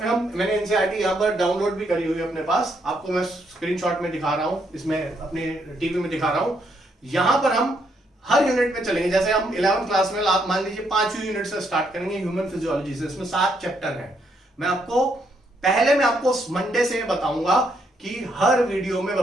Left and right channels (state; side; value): normal; both; correlation 0.74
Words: में मैंने एनसीईआरटी यहां पर डाउनलोड भी करी हुई है अपने पास, आपको मैं स्क्रीनशॉट में दिखा रहा हूं, इसमें अपने टीवी में दिखा रहा हूं। यहां पर हम हर यूनिट में चलेंगे। जैसे हम 11th क्लास में मान लीजिए 5वीं यूनिट से स्टार्ट करेंगे, ह्यूमन फिजियोलॉजी से, इसमें 7 चैप्टर हैं। मैं आपको मंडे से बताऊंगा कि हर वीडियो में